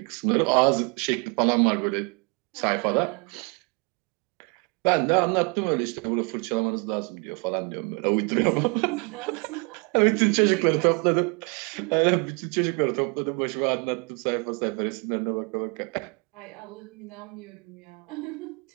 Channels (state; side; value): quieter; left; 32.5 dB